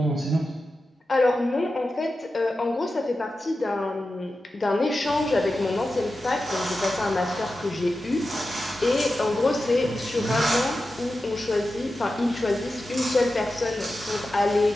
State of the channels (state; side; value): normal; both; correlation 0.92